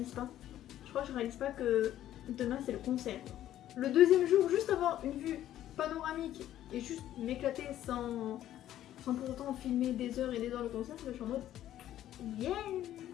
pas. Je crois que je réalise pas que demain c'est le concert. Le deuxième jour, juste avoir une vue panoramique et juste m'éclater sans pour autant filmer des heures et des heures le concert, je suis en mode yeah.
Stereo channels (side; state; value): right; quieter; 12.4 dB